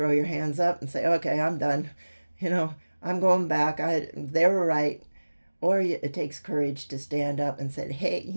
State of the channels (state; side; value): inverted; both; correlation -1.00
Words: your hands up and say, okay, I'm done. I'm going back. They were right. Or it takes courage to stand up and say, hey,